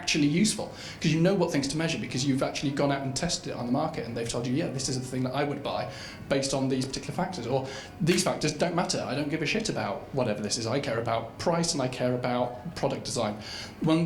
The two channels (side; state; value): both; identical; correlation 1.00